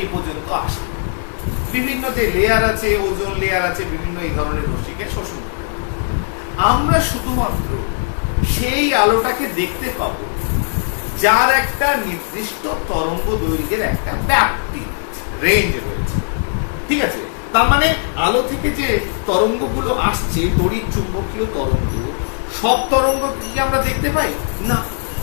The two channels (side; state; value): right; silent; 67 dB below the other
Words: এই পর্যন্ত আসে। বিভিন্ন যে লেয়ার আছে, ওজোন লেয়ার আছে, বিভিন্ন এই ধরনের রশ্মিকে শোষণ করে। আমরা শুধুমাত্র সেই আলোটাকে দেখতে পাবো যার একটা নির্দিষ্ট তরঙ্গ দৈর্ঘ্যের একটা ব্যাপ্তি, রেঞ্জ রয়েছে। ঠিক আছে? তার মানে আলো থেকে যে তরঙ্গগুলো আসছে, তড়িৎ চুম্বকীয় তরঙ্গ, সব তরঙ্গ কি আমরা দেখতে পাই না।